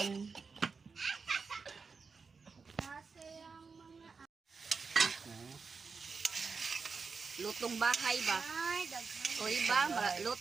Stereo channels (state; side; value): quieter; left; 5.0 dB